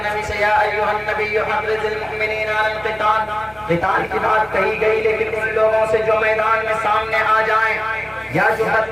نبی سے، یا ایھا النبی حرض المؤمنین علی القتال، قتال کی بات کہی گئی، لیکن ان لوگوں سے جو میدان میں سامنے آ جائیں یا جو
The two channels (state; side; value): noise; right; rumble, 30 dB below the sound